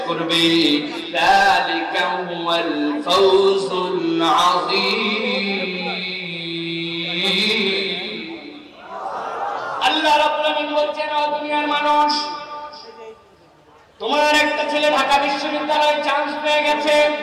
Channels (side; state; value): both; identical; correlation 1.00